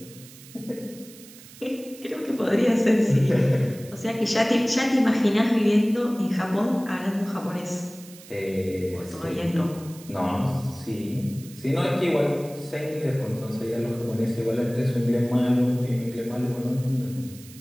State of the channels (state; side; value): noise; right; hiss, 20 dB below the sound